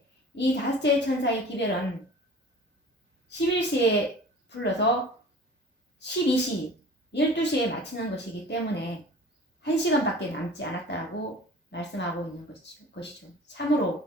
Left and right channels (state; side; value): normal; both; correlation 0.43